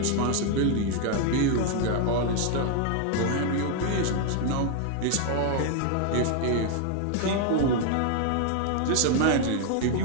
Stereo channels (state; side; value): different; both; correlation 0.00